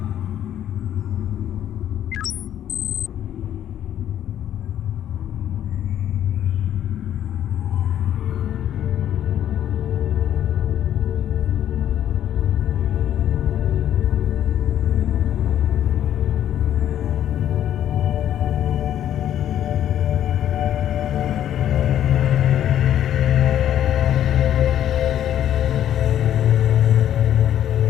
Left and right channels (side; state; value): right; quieter; 10.9 dB